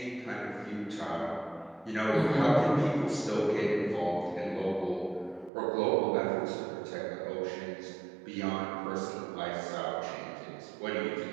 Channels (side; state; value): left; drops out; at 5.5 s